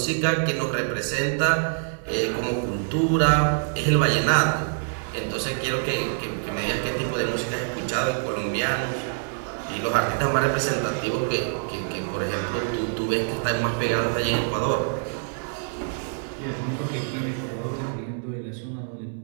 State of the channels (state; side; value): silent; left; digital silence